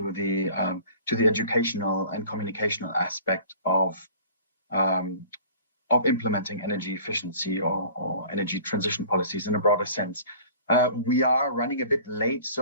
the educational and communicational aspect of of implementing energy efficiency or energy transition policies in a broader sense. We are running a bit late,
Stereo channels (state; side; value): inverted; both; correlation -0.46